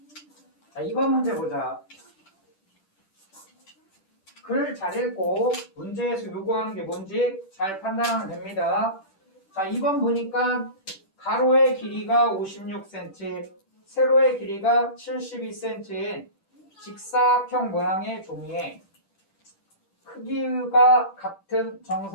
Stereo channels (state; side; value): late; right; 10 ms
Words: 자, 2번 문제 보자. 글 잘 읽고 문제에서 요구하는 게 뭔지 잘 판단하면 됩니다. 자, 2번 보니까 가로의 길이가 56cm, 세로의 길이가 72cm인 직사각형 모양의 종이에 크기가 같은